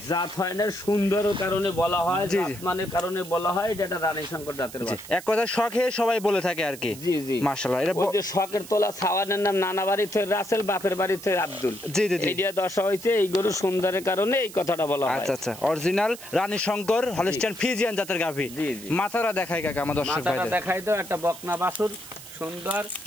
জাত হয় না, সুন্দর কারণে বলা হয়, জাতমানের কারণে বলা হয় এটা একটা রানী শঙ্কর জাতের বাচ্চা। এক কথা শখে সবাই বলে থাকে আর কি। জি জি মাশাআল্লাহ। এটা যে শখের তোলা ছাওয়ানের নাম নানা বাড়ি থেকে রাসেল, বাপের বাড়ি থেকে আব্দুল। জি জি জি। এইটা দশা হয়েছে এই গরু সুন্দরের কারণে এই কথাটা বলা হয়। আচ্ছা আচ্ছা, অরিজিনাল রানী শঙ্কর হলস্টাইন ফ্রিজিয়ান জাতের গাভী। জি জি। মাথাটা দেখাই কাকা আমার দর্শক ভাইদের। মাথাটা দেখাই দাও, একটা বকনা বাছুর সুন্দর।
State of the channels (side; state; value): right; noise; hiss, 15 dB below the sound